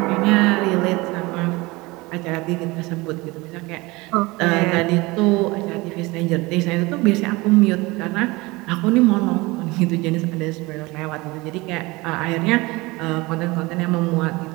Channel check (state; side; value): quieter; left; 22.8 dB